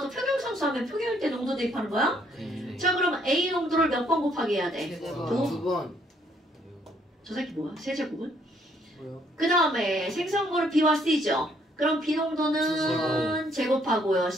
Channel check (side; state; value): both; normal; correlation 0.67